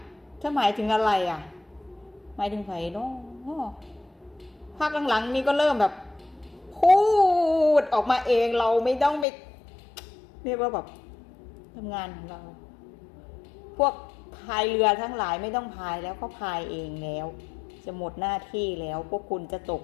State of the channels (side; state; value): right; drops out; at 9.2 s